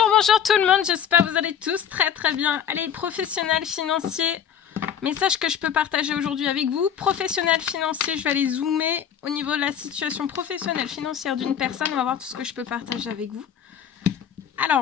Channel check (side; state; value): right; quieter; 8.5 dB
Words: bonjour tout le monde, j'espère que vous allez tous très très bien. Allez, professionnels financiers, message que je peux partager aujourd'hui avec vous. Professionnels financiers, je vais aller zoomer au niveau de la situation professionnelle financière d'une personne. On va voir tout ce que je peux partager avec vous.